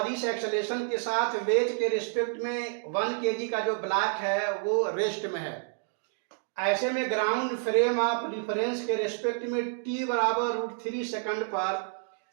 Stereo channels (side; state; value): left; silent; 57 dB below the other